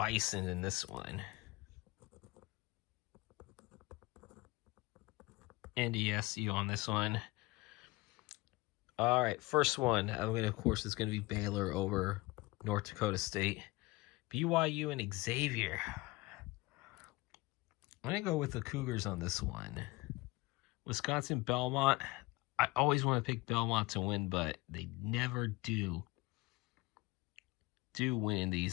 in this one. NDSU on this one. All right, first one. Of course, it's going to be Baylor over North Dakota State. BYU and Xavier. I'm going to go with the Cougars on this one. Wisconsin, Belmont. I always want to pick Belmont to win, but they never do win in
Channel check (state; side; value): quieter; right; 22.2 dB